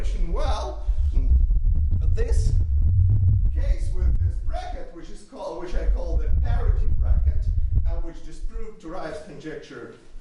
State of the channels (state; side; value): identical; both; correlation 1.00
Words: Well, this case with this bracket, which I call the parity bracket, and which disproved Turai's conjecture